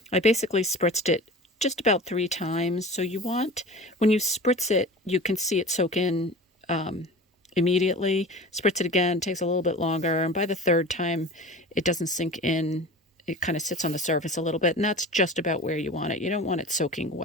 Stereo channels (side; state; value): both; normal; correlation 0.36